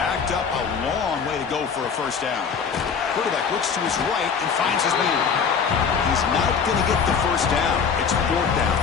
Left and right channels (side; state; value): right; quieter; 6.3 dB